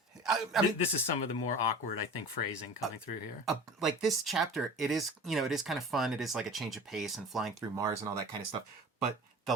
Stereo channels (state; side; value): normal; both; correlation 0.39